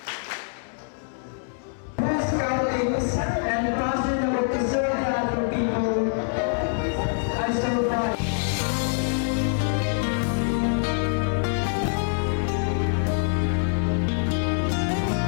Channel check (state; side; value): silent; right; 62 dB below the other